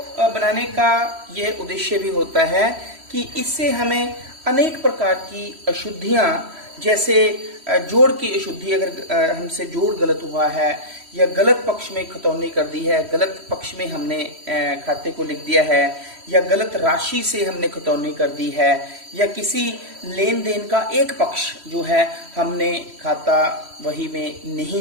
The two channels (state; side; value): late; left; 3.1 ms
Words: बनाने का यह उद्देश्य भी होता है कि इससे हमें अनेक प्रकार की अशुद्धियां, जैसे जोड़ की अशुद्धि, अगर हमसे जोड़ गलत हुआ है या गलत पक्ष में खतौनी कर दी है, गलत पक्ष में हमने खाते को लिख दिया है, या गलत राशि से हमने खतौनी कर दी है, या किसी लेन देन का एक पक्ष जो है हमने खाता वही में